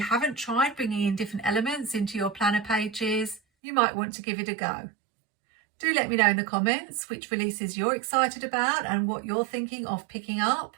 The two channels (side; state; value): left; drops out; at 3.4 s